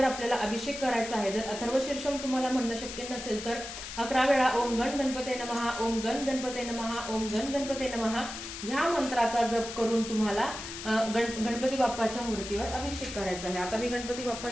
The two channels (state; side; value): noise; left; hiss, 9 dB below the sound